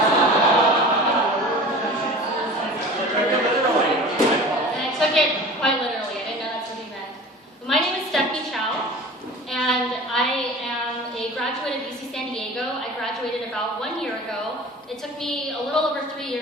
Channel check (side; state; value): both; normal; correlation 0.39